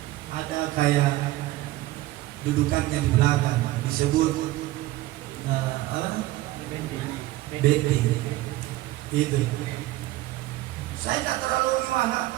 ada kayak dudukannya di belakang, disebut apa? Bendi. Itu. Saya tidak terlalu gimana.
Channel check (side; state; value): left; quieter; 16.8 dB